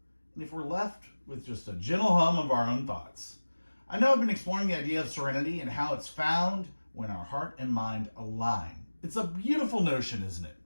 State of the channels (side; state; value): both; inverted; correlation -1.00